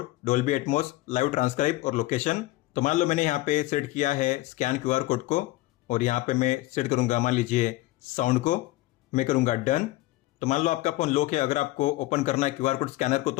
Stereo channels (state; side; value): quieter; right; 17.9 dB